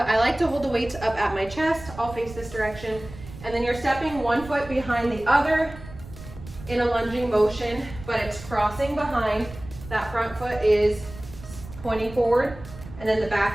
I like to hold the weights up at my chest. I'll face this direction. And then you're stepping one foot behind the other in a lunging motion, but it's crossing behind. That front foot is pointing forward, and then the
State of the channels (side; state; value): right; noise; rumble, 15 dB below the sound